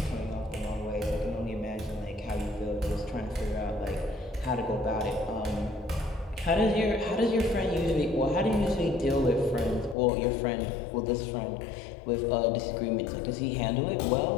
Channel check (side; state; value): right; drops out; at 10.0 s